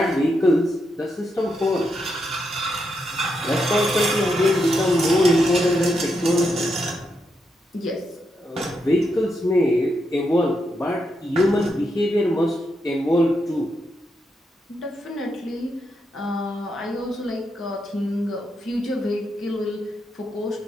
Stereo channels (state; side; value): normal; both; correlation 0.82